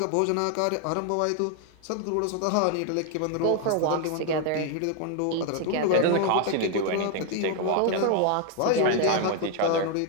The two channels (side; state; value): both; different; correlation 0.01